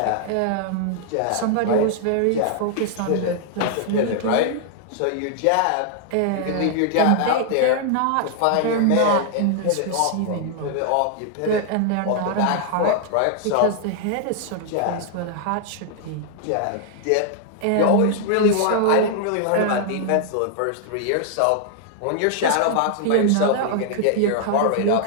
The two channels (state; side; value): different; both; correlation 0.00